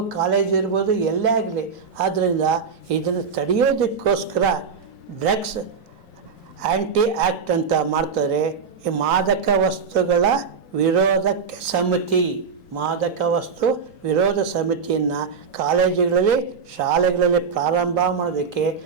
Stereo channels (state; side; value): quieter; left; 5.7 dB